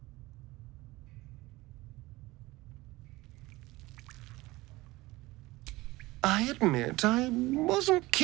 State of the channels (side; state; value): left; quieter; 20.1 dB